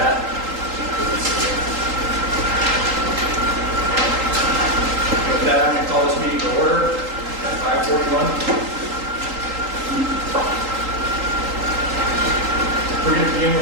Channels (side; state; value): left; late; 3.8 ms